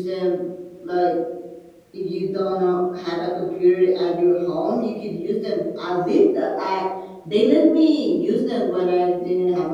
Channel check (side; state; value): both; identical; correlation 1.00